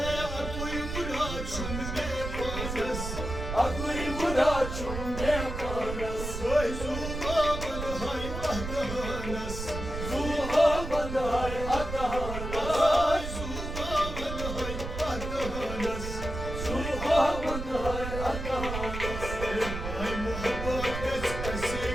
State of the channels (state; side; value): noise; right; rumble, 6 dB below the sound